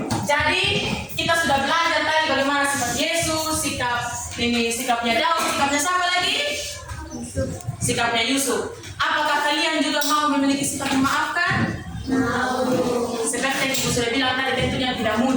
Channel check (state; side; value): identical; both; correlation 1.00